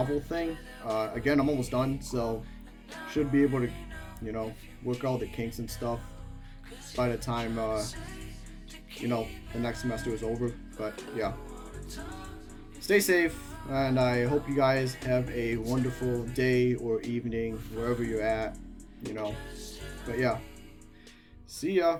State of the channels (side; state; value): both; identical; correlation 1.00